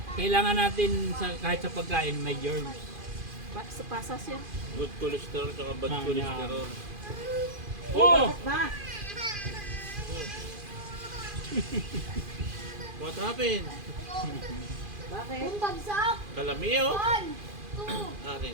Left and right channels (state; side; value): late; left; 2.4 ms